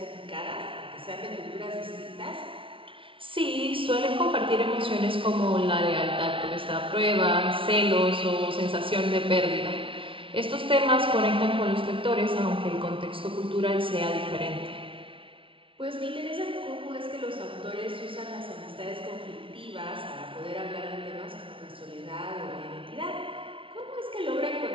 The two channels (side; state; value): left; late; 0.25 ms